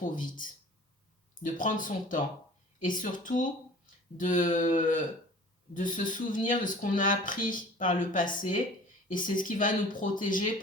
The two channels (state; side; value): normal; both; correlation 0.45